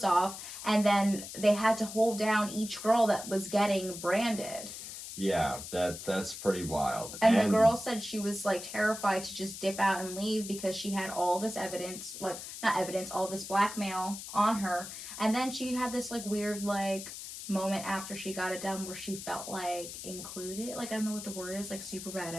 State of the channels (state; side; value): noise; left; hiss, 10 dB below the sound